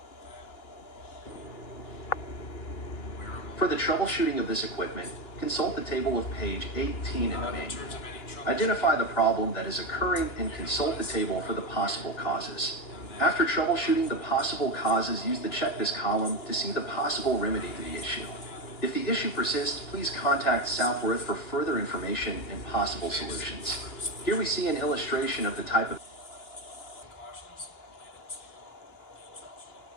For the troubleshooting of this equipment, consult the table of page 18 in the manual. Identify the problem that is occurring and consult the table for the possible causes. After troubleshooting the possible causes, use the check this column to see the possible remedy to the issue. If the issue persists, please contact Southworth for further information and possible solutions. Here we see an illustration of the type of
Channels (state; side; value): late; right; 2.9 ms